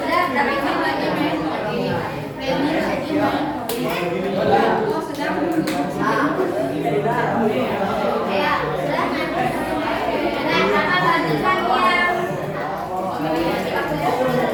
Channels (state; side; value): identical; both; correlation 1.00